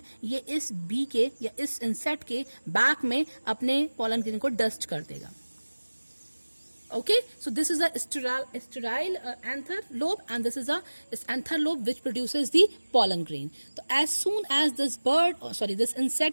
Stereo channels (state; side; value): inverted; both; correlation -1.00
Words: ये इस बी के या इस इंसेक्ट के बैक में अपने पॉलन ग्रेन को डस्ट कर देगा. Okay, so this is a sterile anther lobe, and this is a anther lobe which produces the pollen grain. So as soon as this this